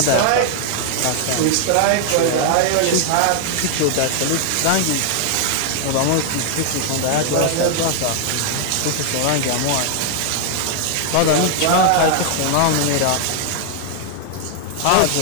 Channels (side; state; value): both; different; correlation 0.00